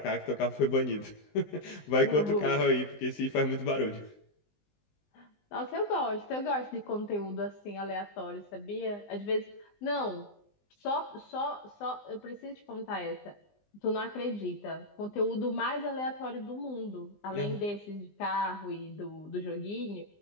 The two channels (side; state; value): right; late; 20 ms